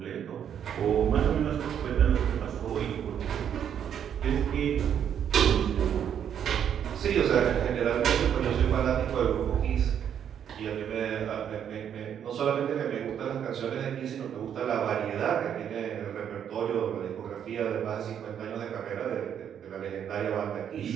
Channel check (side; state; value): left; quieter; 8.9 dB